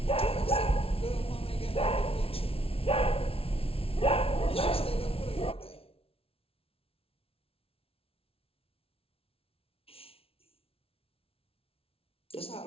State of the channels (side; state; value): right; late; 0.27 ms